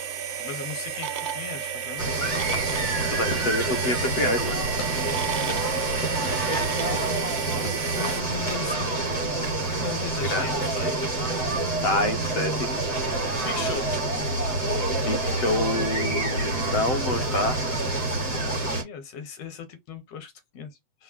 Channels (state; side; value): late; right; 7.9 ms